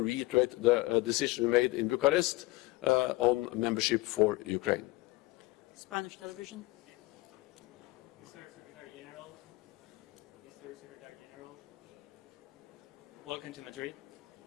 reiterate the decision we made in Bucharest on membership for Ukraine. Spanish television. Welcome to Madrid.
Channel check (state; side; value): quieter; right; 21.0 dB